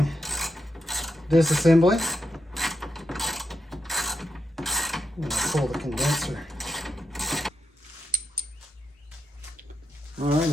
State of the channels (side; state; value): both; normal; correlation 0.86